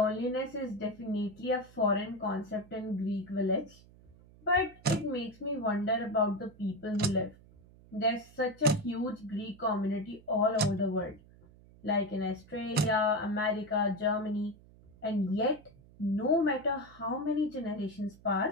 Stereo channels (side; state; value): right; noise; hum, 24 dB below the sound